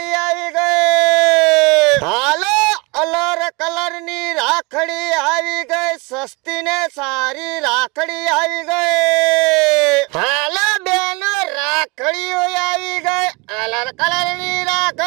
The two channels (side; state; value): left; quieter; 27.2 dB